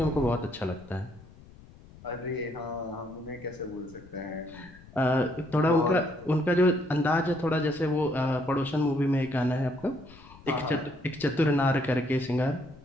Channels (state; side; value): noise; left; rumble, 22 dB below the sound